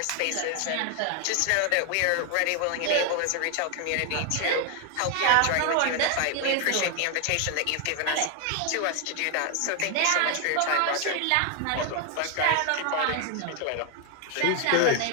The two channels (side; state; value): both; different; correlation 0.00